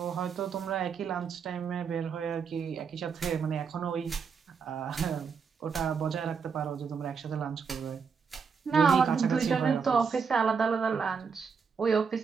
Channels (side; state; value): left; quieter; 5.9 dB